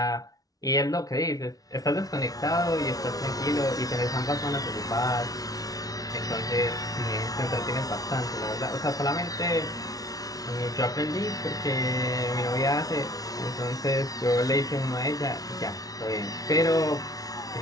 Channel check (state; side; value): late; right; 0.18 ms